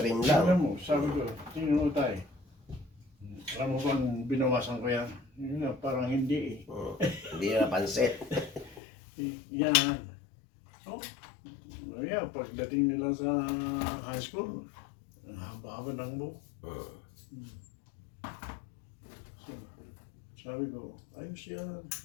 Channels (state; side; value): drops out; right; at 8.8 s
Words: lang. Tingnan mo, sabi ko, tingnan mo tayo. Alam mo bang binawasan ko yan? Yun nga, parang hindi eh. Hindi na napansin. Yan. So, yeah, pagdating nila sa high school, ang haba-haba ng buhok. So, sabi ko, ayos yan.